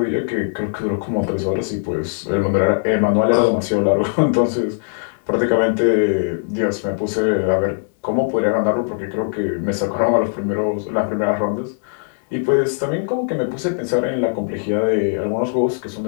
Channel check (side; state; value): right; silent; digital silence